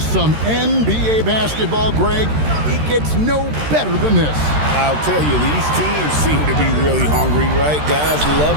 some NBA basketball, Greg. It gets no better than this. I'll tell you, these teams seem to be really hungry, right? Guys love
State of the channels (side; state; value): left; late; 13 ms